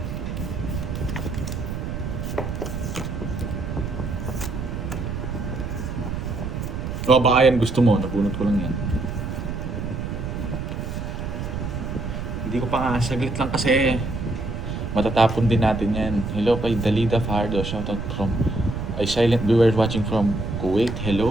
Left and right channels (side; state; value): right; noise; rumble, 5 dB below the sound